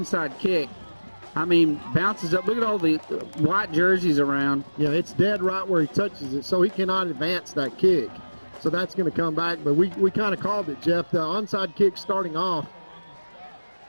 kick. I mean, bounces up. Look at all the white jerseys around. Yeah, it's dead right where he touches it, so he cannot advance that kick. So that's going to come back. But we kind of called it, Jeff. The onside kick starting off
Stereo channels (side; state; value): both; inverted; correlation -1.00